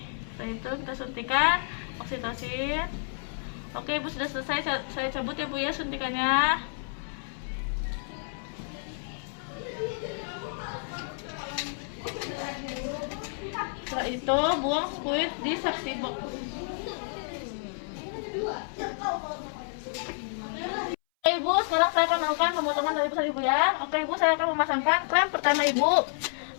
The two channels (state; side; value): silent; right; 58 dB below the other